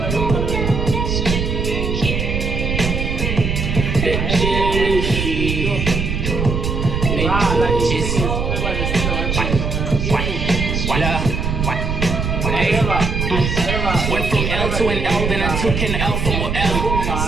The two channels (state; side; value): noise; right; rumble, 1 dB below the sound